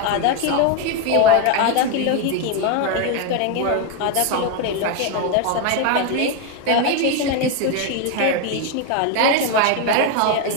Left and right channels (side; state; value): both; different; correlation 0.01